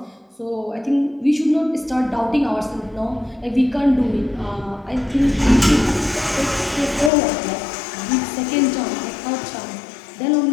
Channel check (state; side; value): drops out; right; at 7.1 s